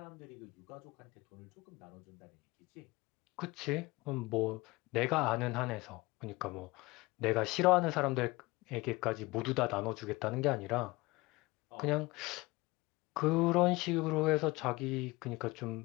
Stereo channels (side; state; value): right; quieter; 22.1 dB